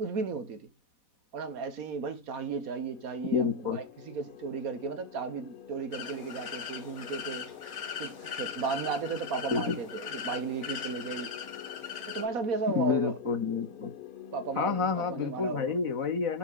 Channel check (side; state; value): left; late; 4.0 ms